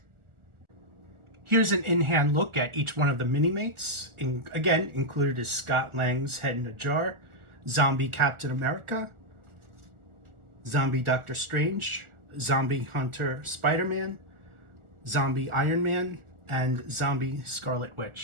Here's an in-hand look at each one of the Minimates. Again, included is Scott Lang's Head in a Jar, Zombie Captain America, Zombie Doctor Strange, Zombie Hunter Spider-Man, Zombie Iron Man, and Zombie Scarlet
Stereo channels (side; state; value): left; late; 1.5 ms